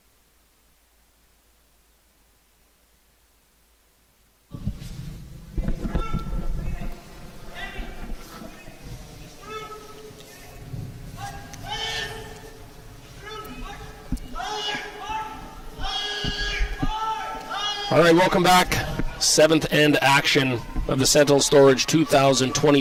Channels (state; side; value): identical; both; correlation 1.00